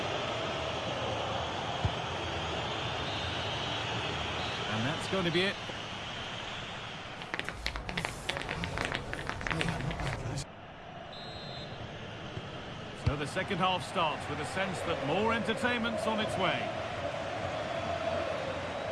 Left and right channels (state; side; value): identical; both; correlation 1.00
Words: And that's going to be it. So the second half starts with a sense that more entertainment's on its way.